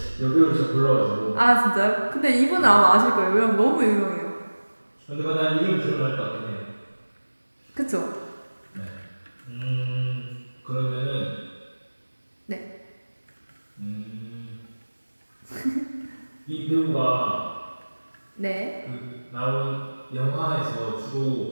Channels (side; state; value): both; inverted; correlation -1.00